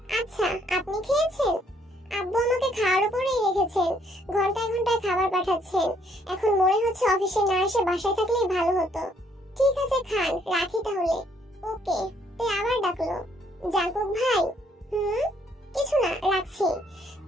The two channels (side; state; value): both; normal; correlation 0.67